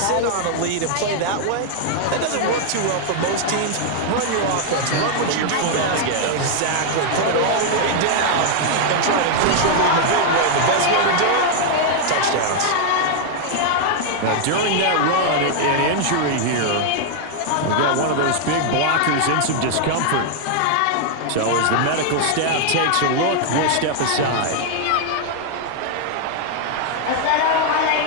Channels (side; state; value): both; different; correlation 0.00